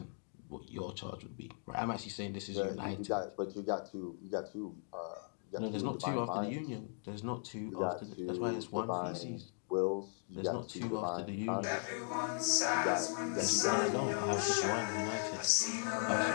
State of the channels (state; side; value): silent; right; 52 dB below the other